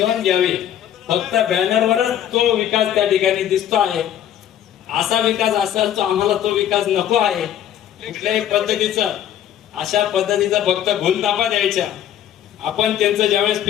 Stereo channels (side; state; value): right; quieter; 10.8 dB